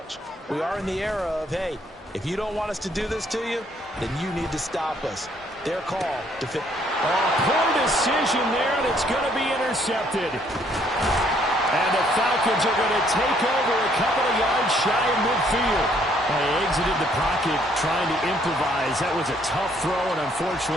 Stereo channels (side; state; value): both; normal; correlation 0.66